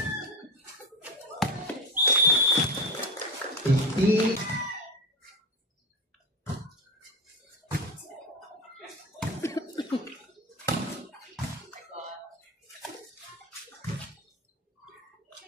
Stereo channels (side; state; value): both; normal; correlation 0.19